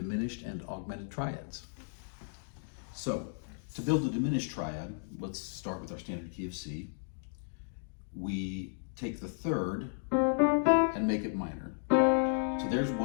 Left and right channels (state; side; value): silent; right; digital silence